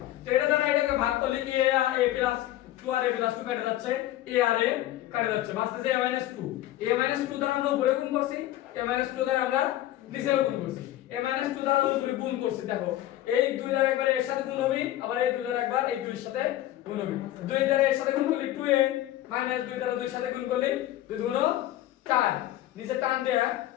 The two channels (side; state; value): right; quieter; 14.2 dB